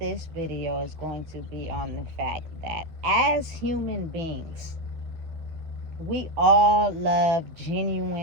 video is going to be on the fact that as human beings, we all love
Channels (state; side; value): late; left; 12 ms